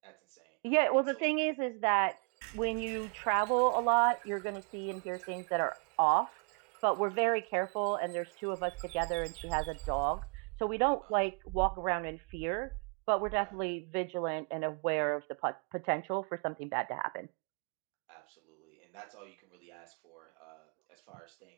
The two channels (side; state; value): left; quieter; 38.4 dB